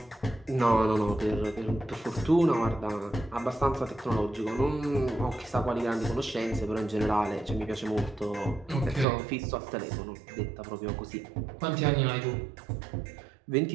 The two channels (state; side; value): drops out; left; at 9.1 s